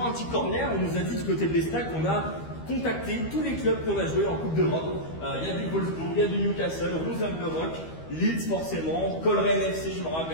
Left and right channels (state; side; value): late; right; 13 ms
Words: un petit corner, on nous a dit du côté de l'Estac qu'on a contacté tous les clubs qu'on a joué en Coupe d'Europe. Il y a du Wolfsburg, il y a du Newcastle, Rosenborg, Leeds forcément, Coleraine FC, je me